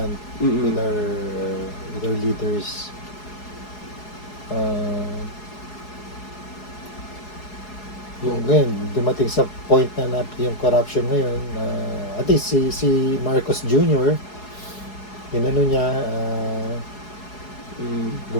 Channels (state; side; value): late; right; 4.7 ms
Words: Mm-mm. with our leaders. Yung ngayon, dumating sa point na yung corruption ngayon, at least si Marcos Jr., inano niya,